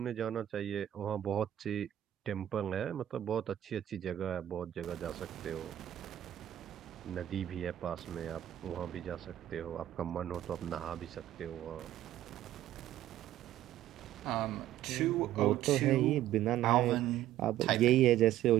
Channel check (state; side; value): quieter; left; 12.6 dB